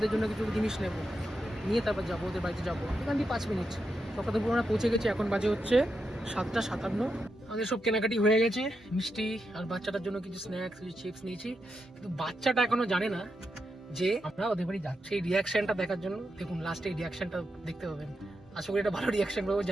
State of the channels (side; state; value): both; normal; correlation 0.86